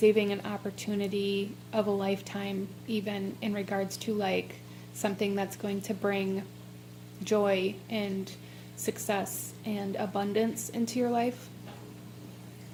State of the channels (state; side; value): identical; both; correlation 1.00